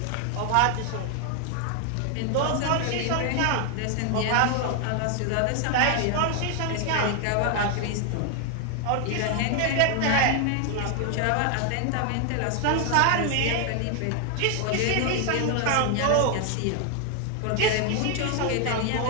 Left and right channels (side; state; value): both; different; correlation 0.00